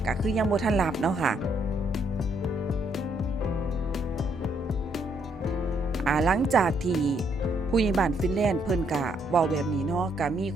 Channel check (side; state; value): both; normal; correlation 0.72